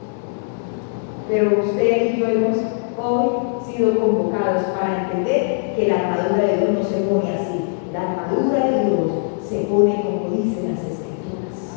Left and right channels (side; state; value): right; silent; 64 dB below the other